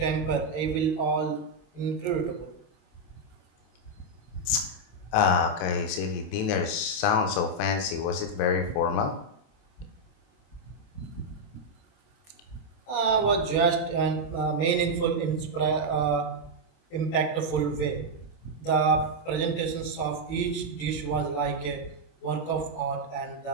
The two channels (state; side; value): late; right; 28 ms